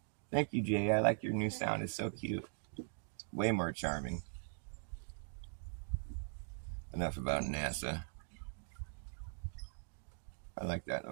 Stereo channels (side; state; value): left; silent; digital silence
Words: Thank you, Jay. I like your new sound. It's so cute. Way more charming. Enough about NASA. I like that